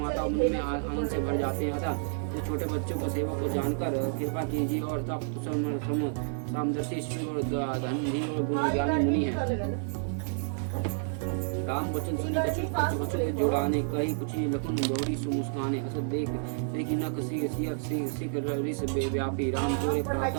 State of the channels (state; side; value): silent; left; 55 dB below the other